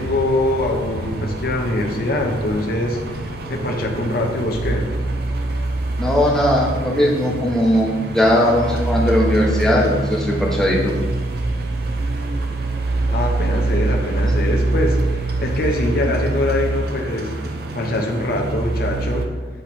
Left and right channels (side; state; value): both; normal; correlation 0.69